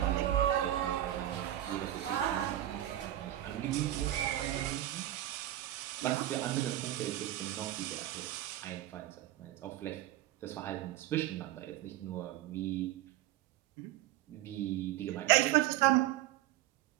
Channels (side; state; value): left; quieter; 14.0 dB